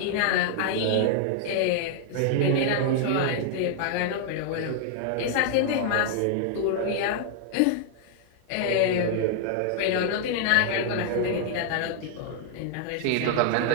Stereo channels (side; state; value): both; different; correlation 0.00